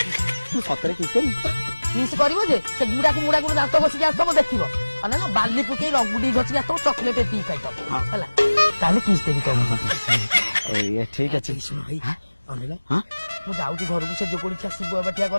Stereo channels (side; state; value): both; inverted; correlation -1.00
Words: मु सतरे किस करी किस करबो जे से मुड़ा को दांत बसी जा सब देखिबो अने ना बाली पुके रगुडी गछि जा तो चॉकलेट टी खाइ तब हला ताले किस देबी तो ये ठीक है भाई अनेला हां मु जाउची घर को से जो कोनी छा शिव बटिया